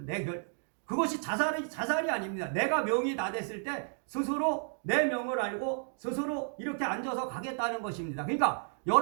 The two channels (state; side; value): silent; left; 56 dB below the other